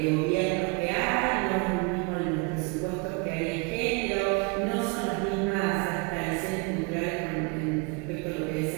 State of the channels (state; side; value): quieter; left; 30.0 dB